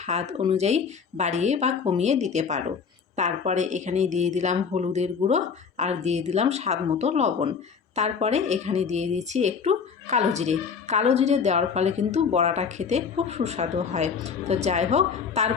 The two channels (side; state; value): right; quieter; 6.2 dB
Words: অনুযায়ী বাড়িয়ে বা কমিয়ে দিতে পারো। তারপরে এখানে দিয়ে দিলাম হলুদের গুঁড়ো, আর দিয়ে দিলাম স্বাদ মতো লবণ। তারপরে এখানে দিয়ে দিচ্ছি একটু কালো জিরে। কালো জিরে দেওয়ার ফলে কিন্তু বড়াটা খেতে খুব সুস্বাদু হয়। তো যাই হোক,